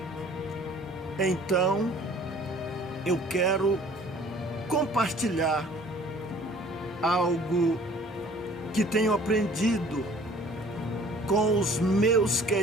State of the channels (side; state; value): both; normal; correlation 0.52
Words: Então, eu quero compartilhar algo que tenho aprendido com os meus